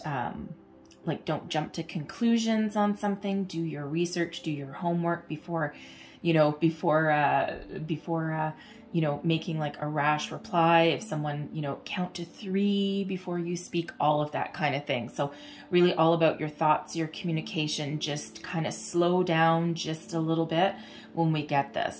jump to conclusions on something. Do your research, do your homework before you know, making like a rash reply. If someone, you know, count to 3 before you speak, all of that kind of thing. So really all about your thoughts, your communication. Just kind of slow down just a little bit when we get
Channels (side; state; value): both; identical; correlation 1.00